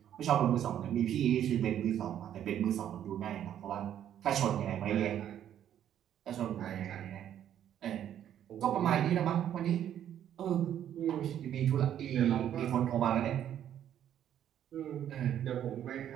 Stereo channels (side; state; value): left; quieter; 10.4 dB